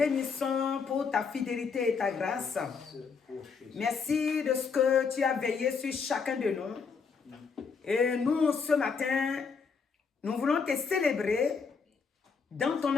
pour ta fidélité et ta grâce. Merci de ce que tu as veillé sur chacun de nous. Et nous, ce matin, nous voulons te célébrer dans ton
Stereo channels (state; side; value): quieter; right; 5.5 dB